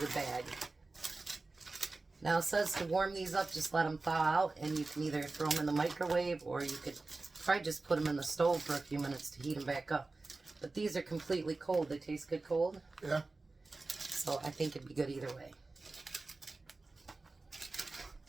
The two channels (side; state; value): left; quieter; 3.5 dB